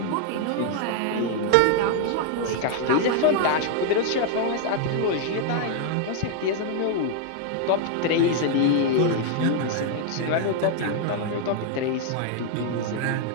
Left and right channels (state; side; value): different; both; correlation 0.00